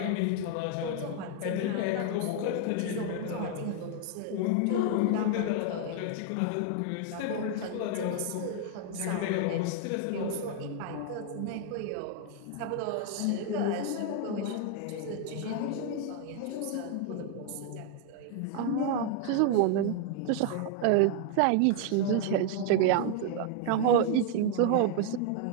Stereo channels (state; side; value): different; both; correlation 0.00